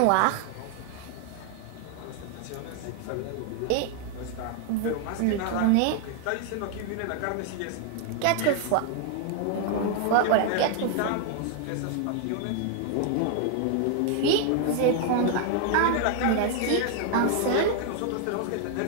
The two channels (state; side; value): different; both; correlation 0.00